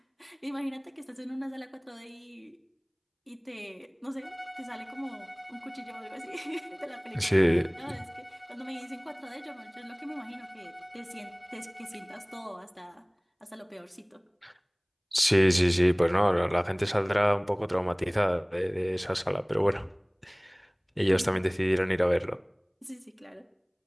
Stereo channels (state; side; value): identical; both; correlation 1.00